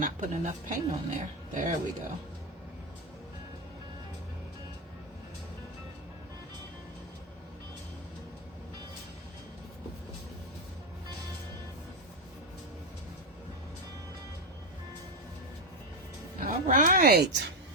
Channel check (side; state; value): both; normal; correlation 0.08